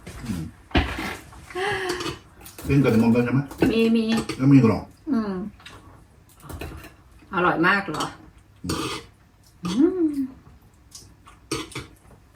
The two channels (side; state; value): both; identical; correlation 1.00